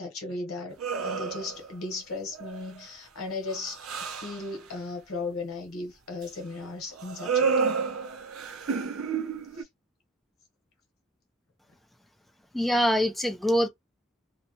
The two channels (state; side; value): normal; both; correlation 0.37